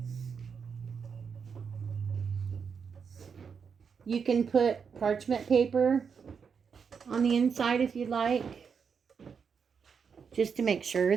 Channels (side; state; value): left; quieter; 6.3 dB